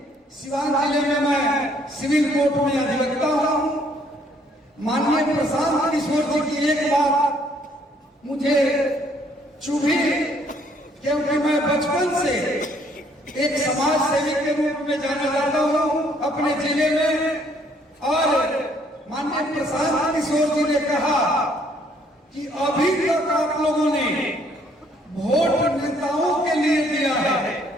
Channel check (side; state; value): both; normal; correlation 0.65